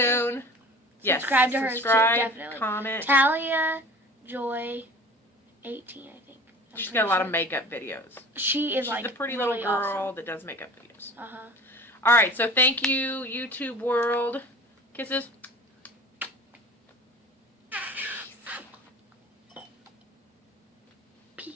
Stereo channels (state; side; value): normal; both; correlation 0.41